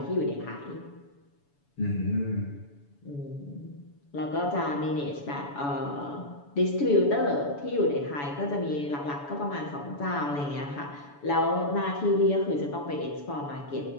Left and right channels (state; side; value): late; right; 7.0 ms